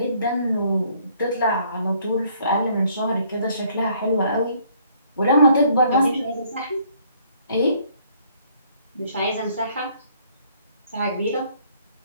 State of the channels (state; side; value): inverted; both; correlation -0.64